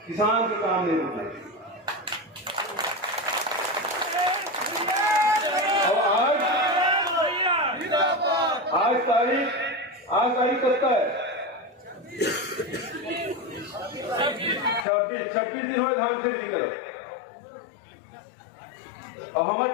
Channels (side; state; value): right; drops out; at 14.9 s